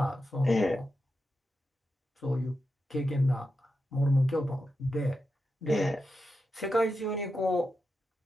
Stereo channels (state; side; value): normal; both; correlation 0.89